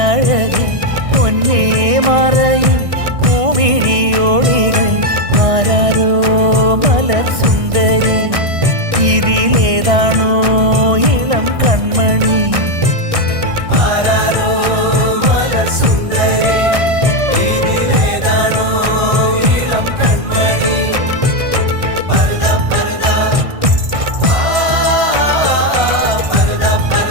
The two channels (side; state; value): left; late; 1.6 ms